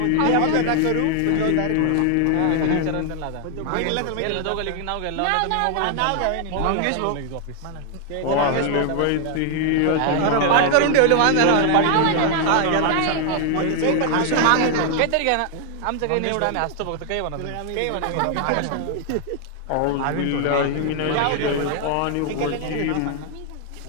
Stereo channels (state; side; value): different; both; correlation 0.00